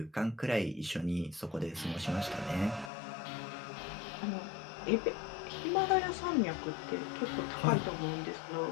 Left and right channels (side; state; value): right; drops out; at 2.9 s